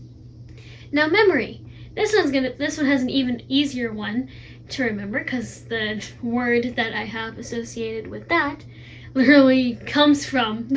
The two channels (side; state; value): both; identical; correlation 1.00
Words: Now memory. This one has an even easier one to remember because the word that I have associated with that literally comes from